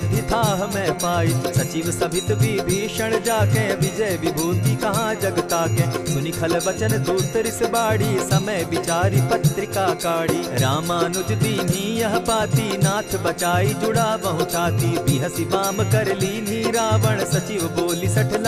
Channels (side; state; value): both; identical; correlation 1.00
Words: थाह मैं पाई। सचिव सभित विभीषण जाके, विजय विभूति कहाँ जगता के। सुनि खल बचन दूत रिस बाड़ी, समय विचारी पत्रिका काढ़ी। रामानुज दीनी यह पाती, नाथ बचाई जुड़ा बहु छाती। बिहसी बाम कर लीनी रावण, सचिव बोली सठ